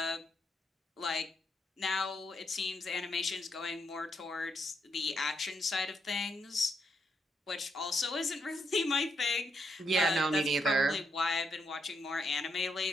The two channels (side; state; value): both; normal; correlation 0.79